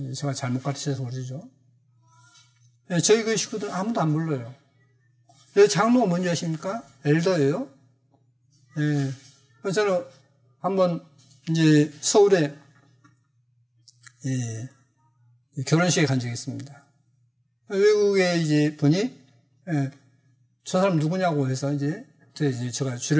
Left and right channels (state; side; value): identical; both; correlation 1.00